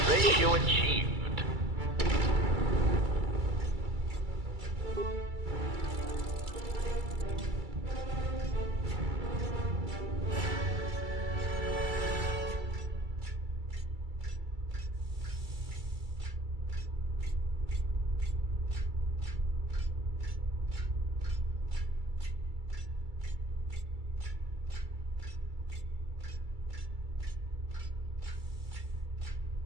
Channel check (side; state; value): left; late; 2.3 ms